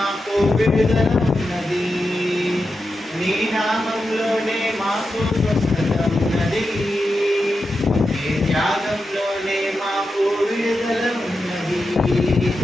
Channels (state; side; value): normal; both; correlation 0.89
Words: విడుదల ఉన్నది, నీ నామంలోనే మాకు స్వస్థత ఉన్నది, నీ త్యాగంలోనే మాకు విడుదల ఉన్నది.